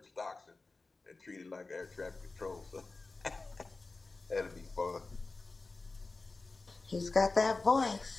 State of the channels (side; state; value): right; quieter; 3.6 dB